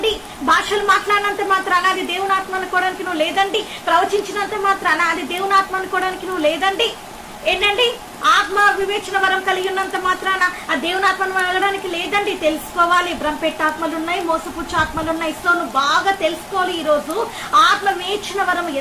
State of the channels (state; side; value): identical; both; correlation 1.00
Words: భాషలు మాట్లాడినంత మాత్రాన అది దేవుని ఆత్మ అనుకోవడానికి నువ్వు లేదండి. ప్రవచించినంత మాత్రాన అది దేవుని ఆత్మ అనుకోవడానికి నువ్వు లేదండి. ఏంటండి ఆత్మ వివేచన వరం కలిగి ఉన్నంత మాత్రాన ఆ దేవుని ఆత్మను అడగడానికి లేదండి. తెలుసుకోవాలి, భ్రమపెట్ట ఆత్మలు ఉన్నాయి, మోసపుచ్చ ఆత్మలు ఉన్నాయి. సో నువ్వు బాగా తెలుసుకోవాలి. ఈ రోజు ఆత్మ వివేచన వరం